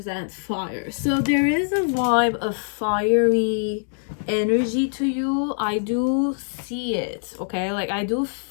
fire. So there is a vibe of fiery energy to you. I do see it, okay? Like, I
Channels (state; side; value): silent; right; digital silence